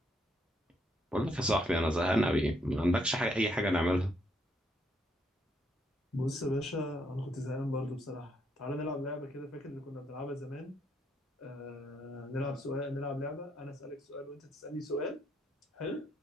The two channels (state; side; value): normal; both; correlation 0.74